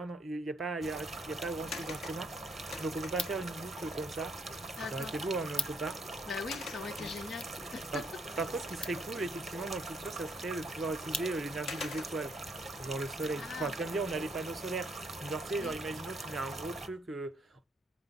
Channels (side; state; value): both; normal; correlation 0.69